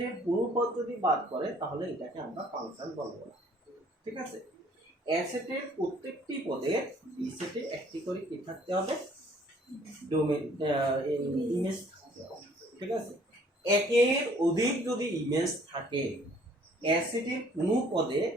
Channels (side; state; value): both; normal; correlation 0.59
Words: কোনো পদ যদি বাদ করে তাহলে এটাকে আমরা ফাংশন বলবো না। ঠিক আছে, এ সেটের প্রত্যেকটি পদে বি সেটে একটি করে কি থাকতে হবে, ডোমেন ইমেজ থাকতে হবে। ঠিক আছে, একের অধিক যদি ইমেজ থাকে, এ সেটের কোনো পদে